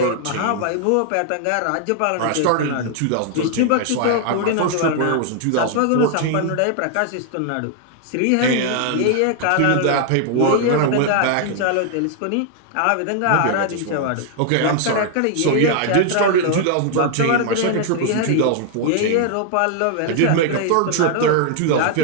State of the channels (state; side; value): different; both; correlation 0.00